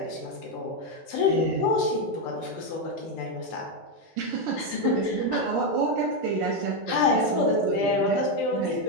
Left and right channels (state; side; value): normal; both; correlation 0.05